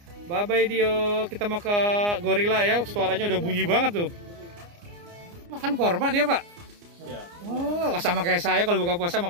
bye bye Dio. Kita mau ke gorila ya. Suaranya udah bunyi banget tuh. Makan korma dia Pak? Ya. Oh, sama kayak saya kalau buka puasa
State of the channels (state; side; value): late; left; 29 ms